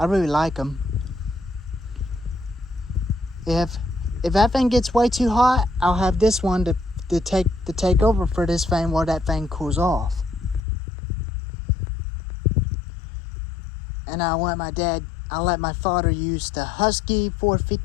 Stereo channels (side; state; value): right; drops out; at 10.6 s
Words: really like them. If that thing gets way too hot, I'll have this one to take over for this thing while that thing cools off. And I'll let my father use the Husky